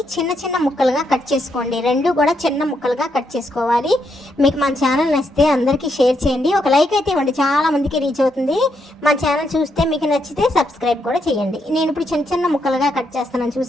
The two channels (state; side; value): normal; both; correlation 0.79